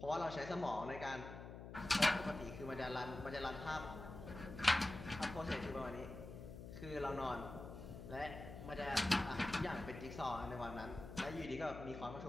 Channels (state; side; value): noise; left; hum, 11 dB below the sound